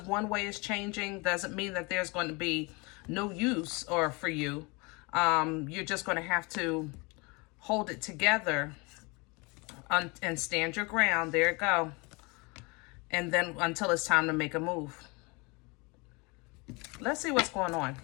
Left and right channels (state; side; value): quieter; right; 28.0 dB